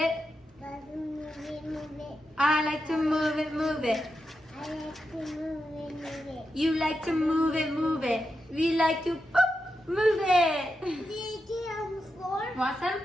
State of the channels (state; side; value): normal; both; correlation 0.87